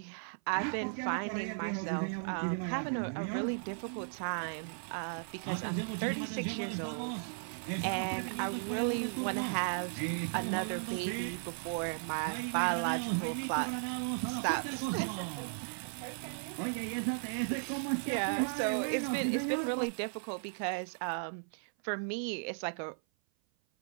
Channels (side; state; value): left; silent; 54 dB below the other